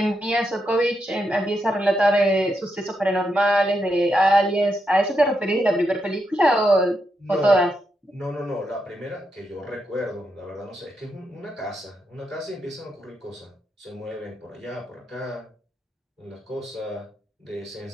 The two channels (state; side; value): normal; both; correlation 0.83